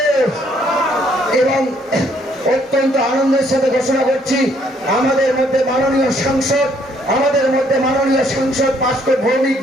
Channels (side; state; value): both; normal; correlation 0.67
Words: এবং অত্যন্ত আনন্দের সাথে ঘোষণা করছি, আমাদের মধ্যে মাননীয় সাংসদ পাস্কর ভৌমিক